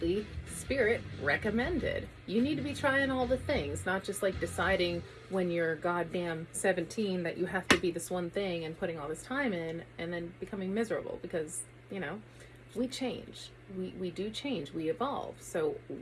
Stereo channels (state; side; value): identical; both; correlation 1.00